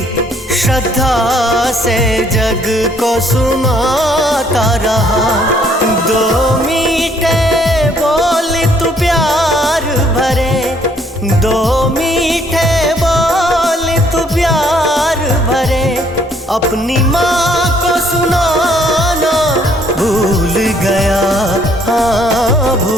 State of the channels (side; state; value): both; normal; correlation 0.65